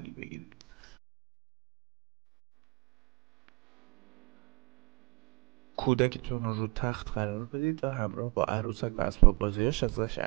بگیرید. کودکتون رو تخت قرار بدید و همراه با عروسک و اسباب بازیاش ازش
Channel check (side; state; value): left; quieter; 25.8 dB